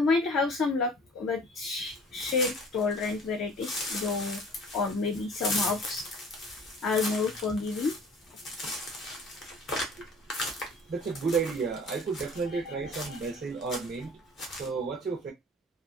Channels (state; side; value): normal; both; correlation 0.47